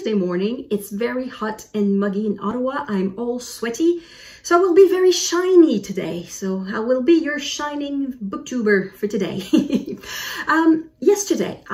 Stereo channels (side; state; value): both; identical; correlation 1.00